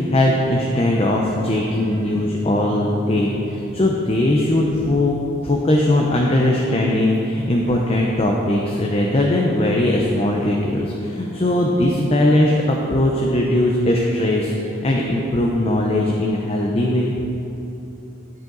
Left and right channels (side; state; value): both; normal; correlation 0.68